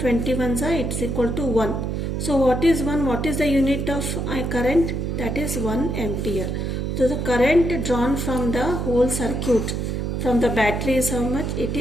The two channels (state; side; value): noise; right; hum, 2 dB below the sound